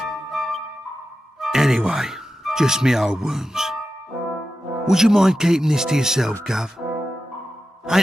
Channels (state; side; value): normal; both; correlation 0.91